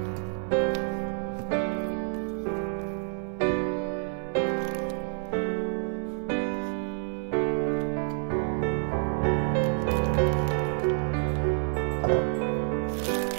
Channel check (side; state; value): left; silent; 59 dB below the other